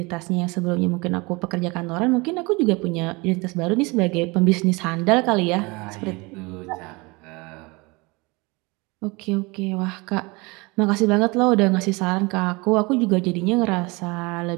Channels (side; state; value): left; quieter; 25.9 dB